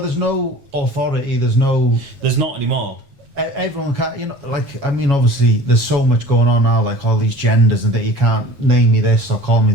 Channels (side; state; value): left; late; 7.1 ms